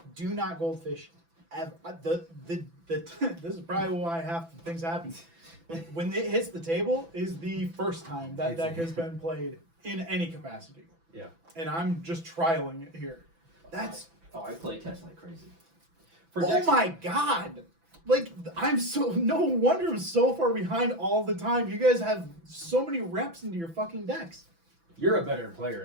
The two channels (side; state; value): left; late; 6.0 ms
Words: do not goldfish. This is probably why half the things happen. When it hits the table is the first time that deck has been played in any capacity. Yeah. And I'm just trialing it here. That's I play test like crazy. oh my god! Like no wonder I'm so far behind all the time. You guys have so many reps into your fucking decks. You're a better